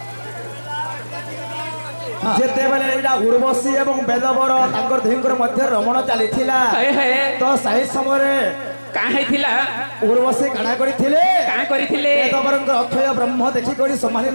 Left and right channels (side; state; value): both; inverted; correlation -1.00